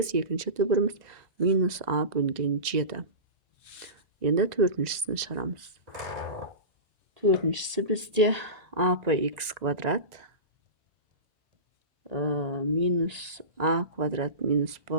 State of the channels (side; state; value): left; late; 2.0 ms